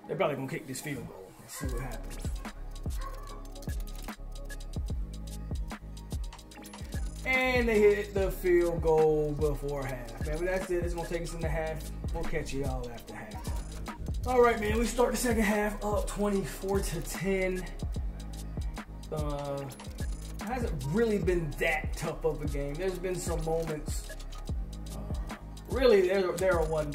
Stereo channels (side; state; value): both; identical; correlation 1.00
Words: They're probably gonna kick this field goal. Let's see what happens. And they hit the field goal before half. Man, but that's it. It's gonna take us in the half. We'll catch you all after half. All right, man. We start the second half up 24-10. Hasn't really been that tough of a game. There's been some moments. Really, they're a